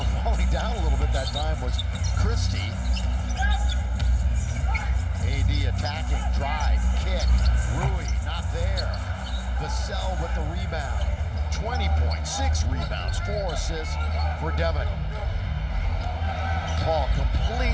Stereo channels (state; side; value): identical; both; correlation 1.00